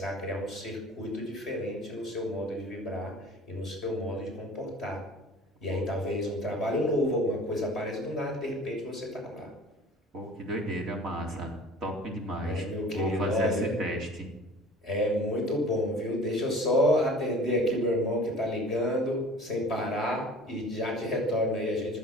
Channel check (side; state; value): both; normal; correlation 0.45